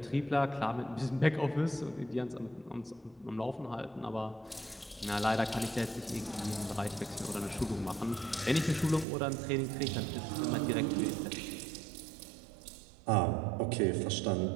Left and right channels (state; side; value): drops out; left; at 9.1 s